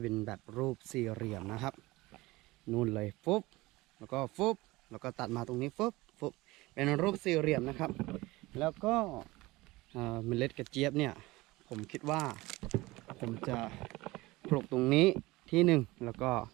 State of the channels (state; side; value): quieter; left; 20.6 dB